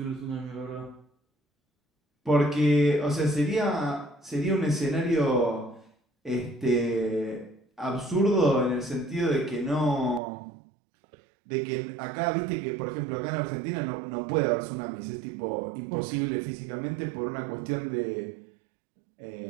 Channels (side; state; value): left; drops out; at 10.2 s